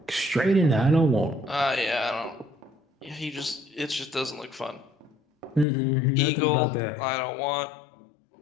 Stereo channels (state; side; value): drops out; right; at 5.7 s